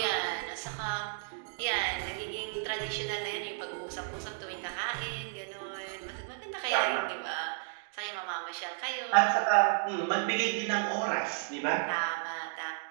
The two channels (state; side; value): silent; left; digital silence